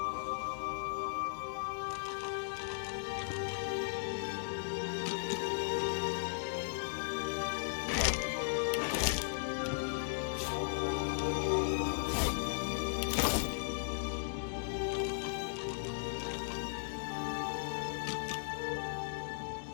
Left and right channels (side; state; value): right; silent; digital silence